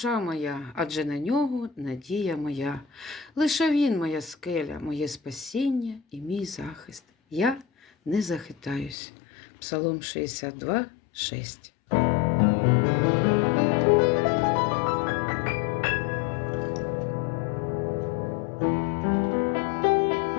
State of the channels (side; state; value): right; drops out; at 9.0 s